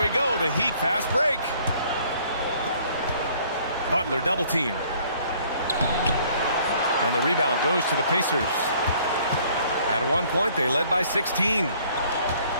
go, the Heat fast break. Butler double teamed. And the rebound goes to the Pacers. At one point, they led by 16.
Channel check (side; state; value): both; inverted; correlation -0.59